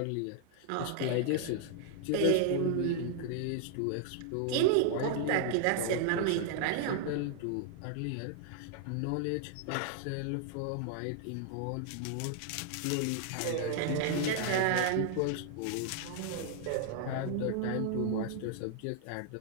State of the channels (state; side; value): different; both; correlation -0.01